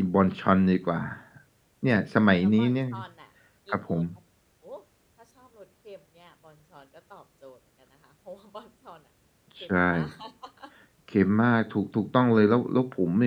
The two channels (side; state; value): both; identical; correlation 1.00